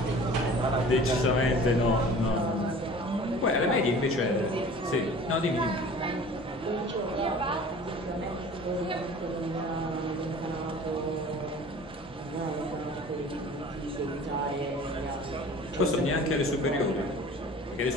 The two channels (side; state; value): both; normal; correlation 0.44